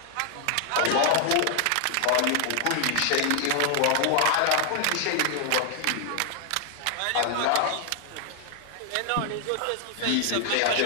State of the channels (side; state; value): both; different; correlation 0.00